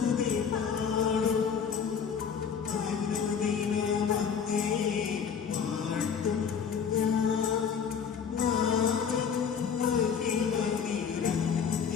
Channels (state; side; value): quieter; right; 6.9 dB